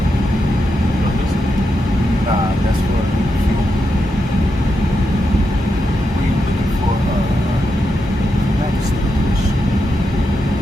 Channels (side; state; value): both; normal; correlation 0.85